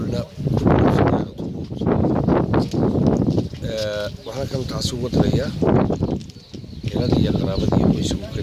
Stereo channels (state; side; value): identical; both; correlation 1.00